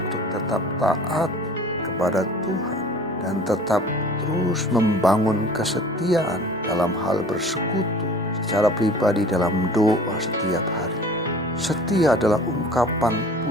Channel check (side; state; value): both; normal; correlation 0.45